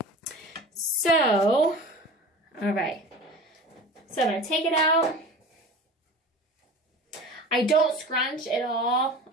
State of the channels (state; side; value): normal; both; correlation 0.36